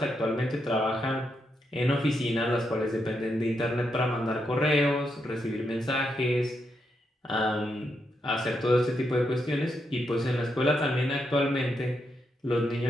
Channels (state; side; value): normal; both; correlation 0.82